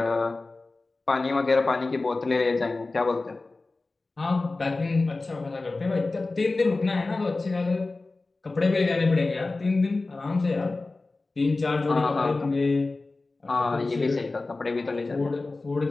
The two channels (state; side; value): quieter; right; 3.4 dB